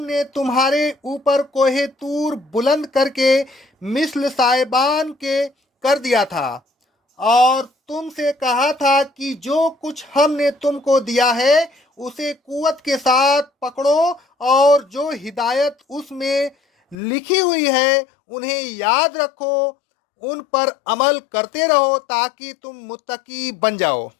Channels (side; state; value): right; drops out; at 16.9 s